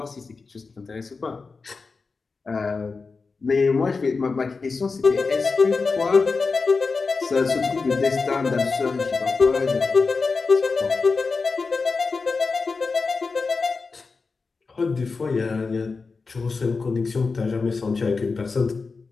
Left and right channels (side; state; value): right; quieter; 4.4 dB